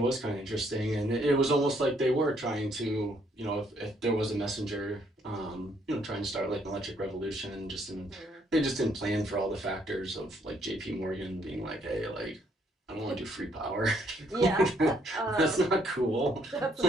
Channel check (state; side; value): normal; both; correlation 0.69